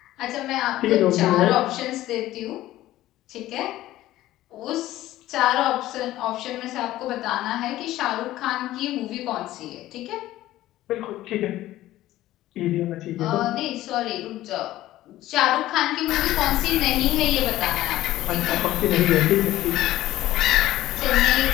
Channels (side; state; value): right; quieter; 15.1 dB